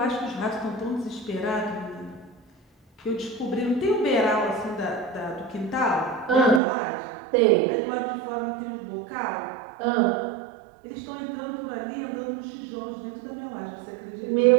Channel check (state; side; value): drops out; left; at 6.6 s